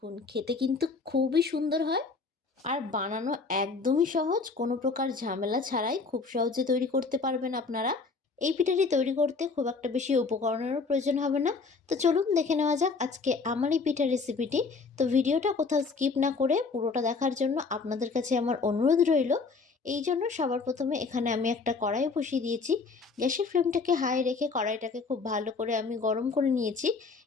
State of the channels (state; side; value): quieter; right; 4.5 dB